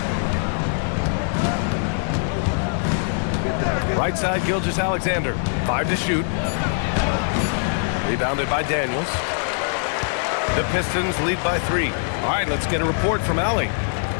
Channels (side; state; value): right; silent; digital silence